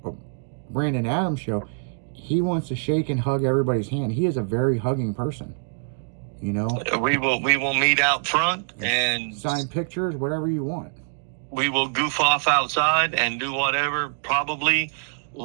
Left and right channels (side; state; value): left; silent; digital silence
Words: Brandon Adams show. He wants to shake and hug everybody's hand. He is a very hugging person, We will meet out front and sign pictures, whatever you want. We will goof off outside and do whatever, probably